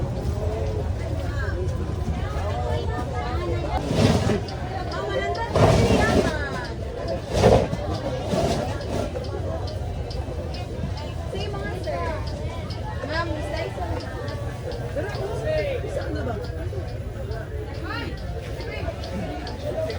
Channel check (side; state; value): both; identical; correlation 1.00